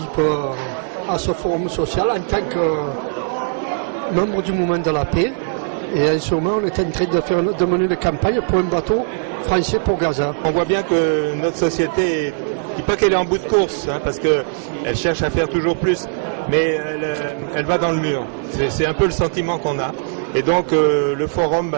à ce forum social en tant que membre du mouvement de la paix, et en ce moment on est en train de mener une campagne pour un bateau français pour Gaza. On voit bien que notre société, je dis pas qu'elle est en bout de course, parce qu'elle cherche à faire toujours plus, mais elle va dans le mur. C'est un peu le sentiment qu'on a. Et donc le forum,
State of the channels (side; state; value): left; silent; digital silence